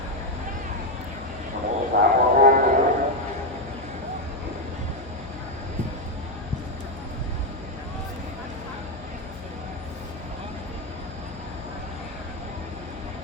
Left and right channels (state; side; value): noise; left; hum, 15 dB below the sound